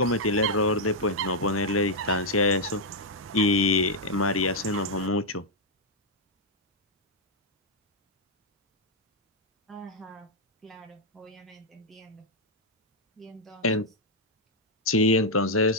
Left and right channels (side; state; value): both; normal; correlation -0.03